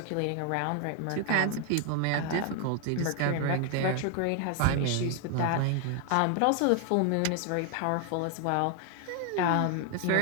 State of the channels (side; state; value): both; different; correlation 0.00